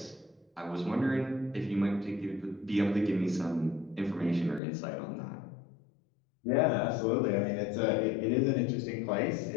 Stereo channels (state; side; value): drops out; right; at 4.6 s